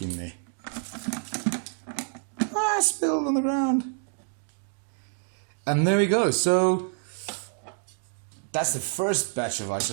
in there. Ah, spilled on the ground. And there we go. So that's the first batch of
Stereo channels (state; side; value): silent; left; 60 dB below the other